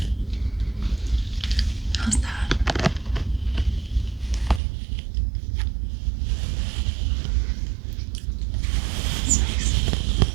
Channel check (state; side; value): drops out; left; at 4.6 s